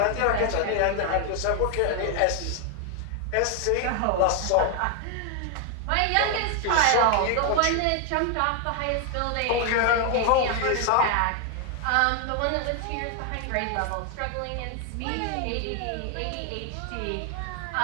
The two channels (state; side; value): different; both; correlation 0.01